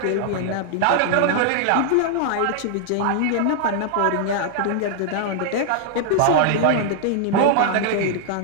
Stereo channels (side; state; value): both; different; correlation 0.00